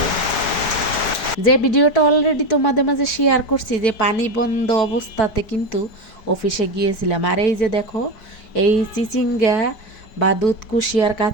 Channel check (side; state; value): right; late; 4.6 ms